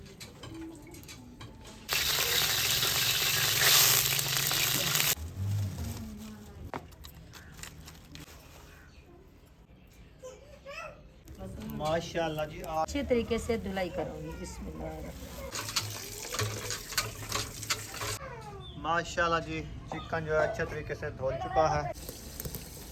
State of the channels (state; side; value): identical; both; correlation 1.00